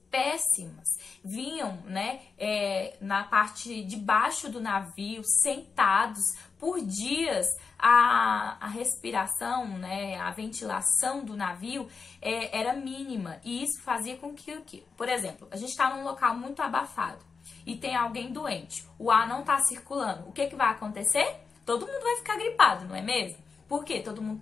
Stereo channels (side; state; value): right; quieter; 5.1 dB